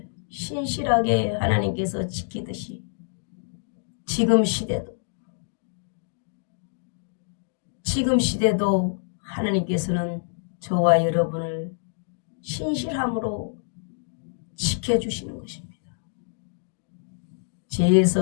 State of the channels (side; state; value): right; silent; digital silence